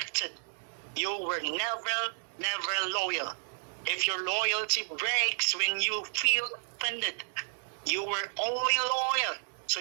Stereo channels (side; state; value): left; silent; digital silence